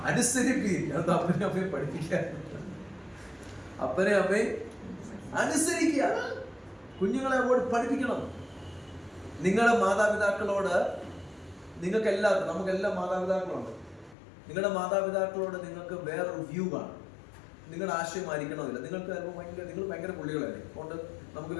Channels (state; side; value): drops out; right; at 14.2 s